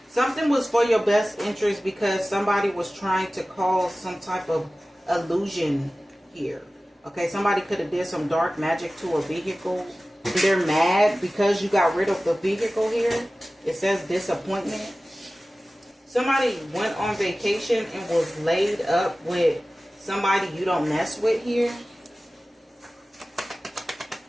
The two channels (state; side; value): normal; both; correlation 0.97